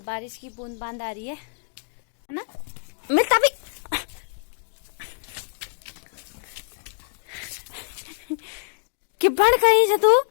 बारिश की बूंद बांद आ रही है ना। मिलता भी कि बढ़ कहीं से तू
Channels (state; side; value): silent; right; digital silence